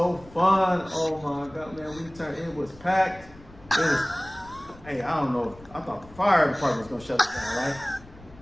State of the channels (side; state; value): left; noise; rumble, 21 dB below the sound